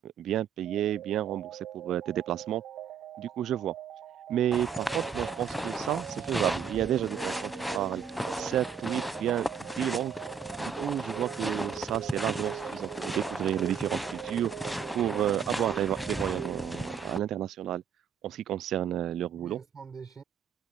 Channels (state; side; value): quieter; left; 7.6 dB